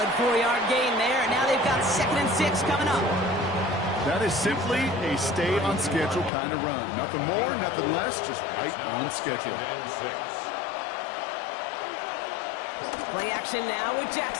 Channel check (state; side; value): drops out; right; at 6.3 s